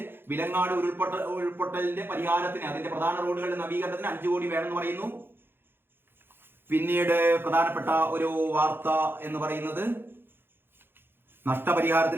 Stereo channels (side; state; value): left; late; 0.10 ms